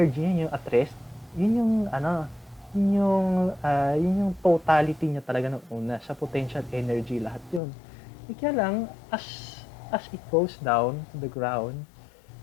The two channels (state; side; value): drops out; right; at 7.6 s